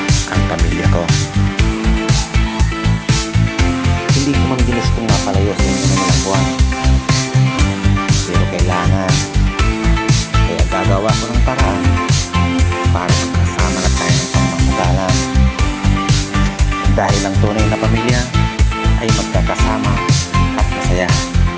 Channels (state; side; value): identical; both; correlation 1.00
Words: ang pamilya ko. Hindi ko man ginustong mapalayo sa inyo ng ilang buwan, pero kailangan, kaya gagawa ko ng paraan para magkasama na tayo ng pangmamagalan. Dahil ang tunay na pamilya ay magkakasama at masaya.